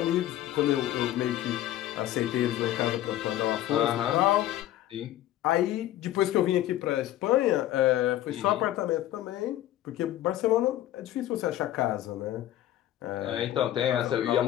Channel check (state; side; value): quieter; right; 13.6 dB